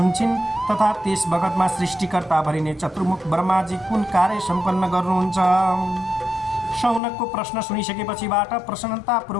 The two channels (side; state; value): right; drops out; at 7.0 s